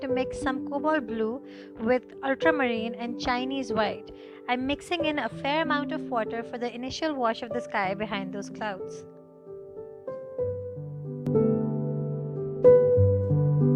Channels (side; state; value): both; identical; correlation 1.00